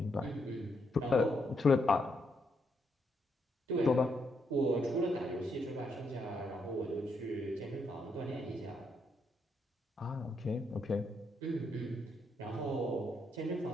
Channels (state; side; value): normal; both; correlation 0.77